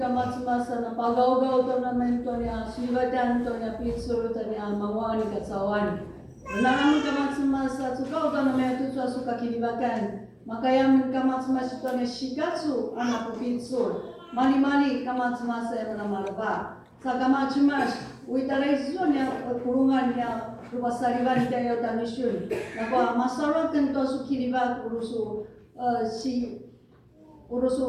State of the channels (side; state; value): both; identical; correlation 1.00